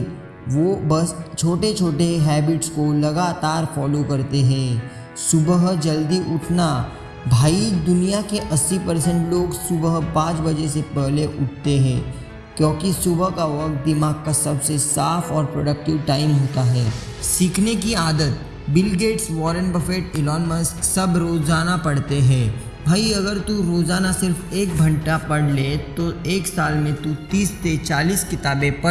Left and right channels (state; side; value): identical; both; correlation 1.00